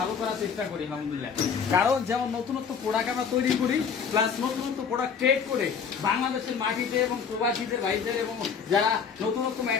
করার চেষ্টা করি আলহামদুলিল্লাহ। কারণ যেমন নতুনত্ব প্রোডাক্ট আমরা তৈরি করি প্লাস নতুনত্ব প্রোডাক্ট ট্রেড করে বাংলাদেশের মাটিতে এবং প্রবাসীদের ভাইদের এবং যারা নতুনত্ব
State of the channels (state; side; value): quieter; right; 6.4 dB